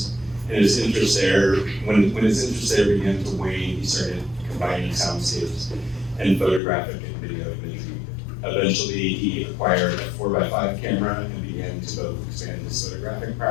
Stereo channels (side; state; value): right; drops out; at 6.6 s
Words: and his interest there, when his interest there began to wane, he started combining soundscapes and photographic and video imagery. Eventually, he acquired a 4x5 camera and began to both expand his photographic